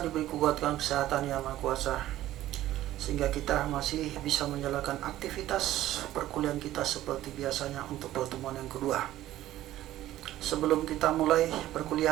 kekuatan kesehatan yang maha kuasa, sehingga kita masih bisa menjalankan aktivitas perkuliahan kita seperti biasanya untuk pertemuan yang kedua. Sebelum kita mulai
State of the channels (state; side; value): quieter; left; 14.2 dB